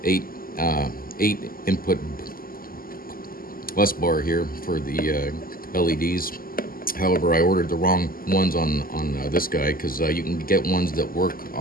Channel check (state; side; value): late; right; 0.42 ms